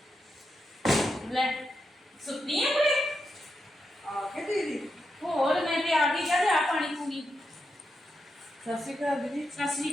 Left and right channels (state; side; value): normal; both; correlation 0.86